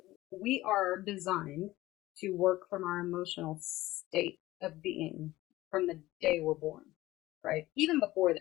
we are designed to work from our emotional state of being from the day we're born, right? Even before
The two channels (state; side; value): quieter; right; 17.3 dB